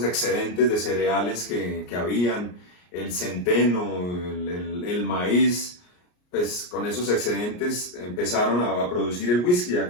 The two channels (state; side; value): late; right; 34 ms